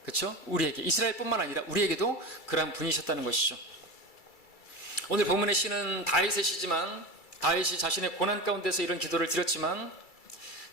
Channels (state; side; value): late; right; 2.3 ms